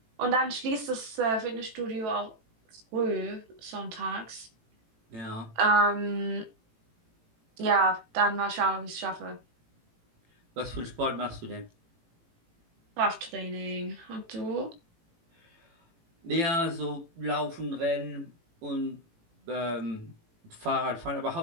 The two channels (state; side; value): late; left; 18 ms